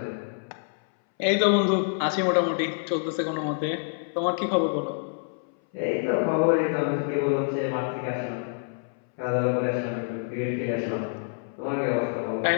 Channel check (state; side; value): silent; right; 60 dB below the other